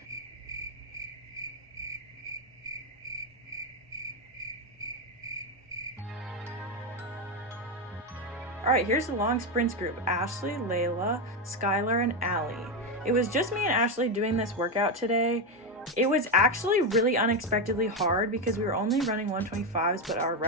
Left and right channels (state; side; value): normal; both; correlation 0.09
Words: Alright, here's the long sprints group: Ashley, Leila, Skylar, and Allie. It was just me and Ashley doing this workout today. It was actually really unexpectedly hard because we were only running 125s, but our